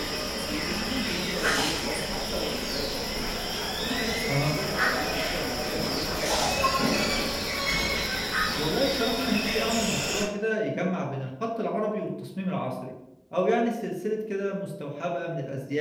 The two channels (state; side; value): identical; both; correlation 1.00